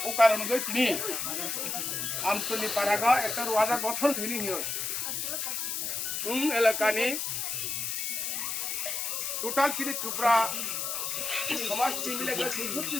ও কারণ গই তিনি আমতলি পারাগা একটা wadah গঠন তিনি হিও। এলাকানি টোটাল চিনি চুপড়া সমাজ মিলে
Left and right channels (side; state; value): left; noise; hiss, 2 dB below the sound